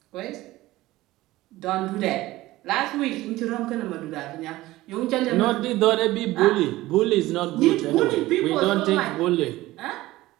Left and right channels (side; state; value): left; quieter; 17.5 dB